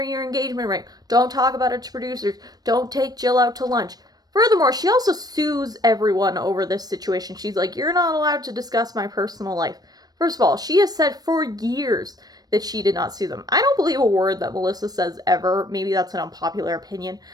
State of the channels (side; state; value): left; late; 0.19 ms